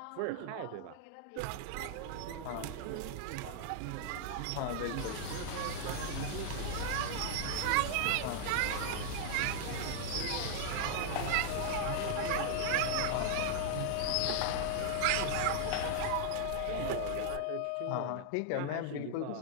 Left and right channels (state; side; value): different; both; correlation 0.00